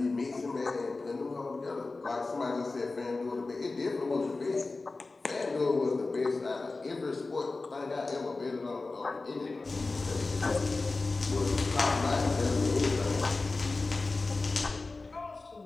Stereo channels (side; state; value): right; quieter; 3.6 dB